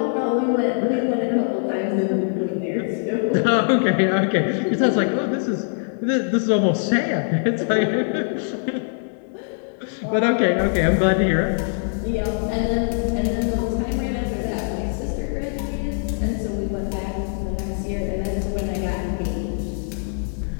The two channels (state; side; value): silent; right; digital silence